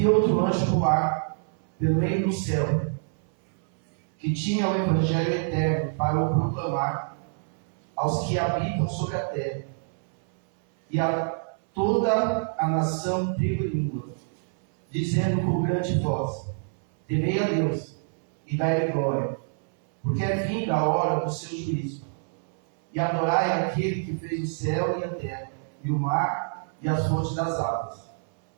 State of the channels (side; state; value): left; silent; 61 dB below the other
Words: outro anjo voar pelo meio do céu, que tinha o Evangelho eterno para o proclamar aos que habitam sobre a terra, e a toda a nação, tribo e língua, dizendo com grande voz: temei a Deus e dai-lhe glória, porque é vinda a hora do seu juízo. E adorai aquele que fez o céu e a terra, e o mar e as fontes das águas.